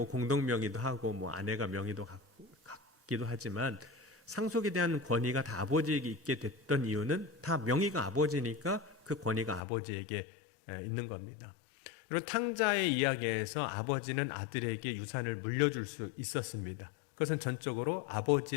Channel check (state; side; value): drops out; right; at 9.6 s